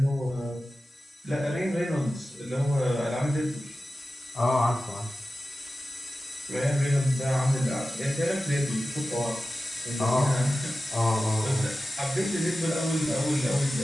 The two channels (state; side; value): normal; both; correlation 0.94